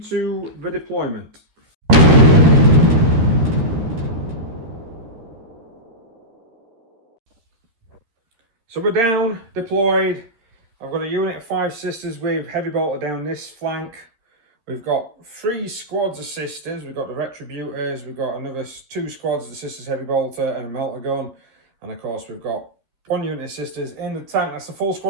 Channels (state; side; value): late; left; 13 ms